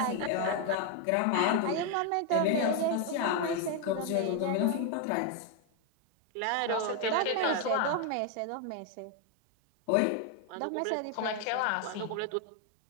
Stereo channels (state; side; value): different; both; correlation 0.01